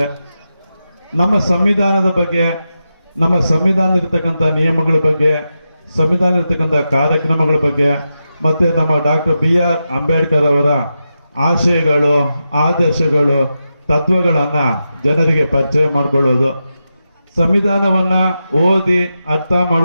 ನಮ್ಮ ಸಂವಿಧಾನದ ಬಗ್ಗೆ, ನಮ್ಮ ಸಂವಿಧಾನ ಇರತಕ್ಕಂಥ ನಿಯಮಗಳ ಬಗ್ಗೆ, ಸಂವಿಧಾನ ಇರತಕ್ಕಂಥ ಕಾರ್ಯಕ್ರಮಗಳ ಬಗ್ಗೆ ಮತ್ತು ನಮ್ಮ ಡಾಕ್ಟರ್ BR ಅಂಬೇಡ್ಕರ್ ಅವರ ಆಶಯಗಳು, ಆದರ್ಶಗಳು, ತತ್ವಗಳನ್ನು ಜನರಿಗೆ ಪರಿಚಯ ಮಾಡಿಕೊಳ್ಳೋದು. ಸಂವಿಧಾನವನ್ನು ಓದಿ ಅರ್ಥ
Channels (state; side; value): inverted; both; correlation -0.89